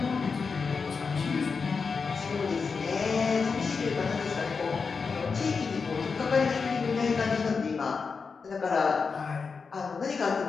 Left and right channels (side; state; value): right; quieter; 5.1 dB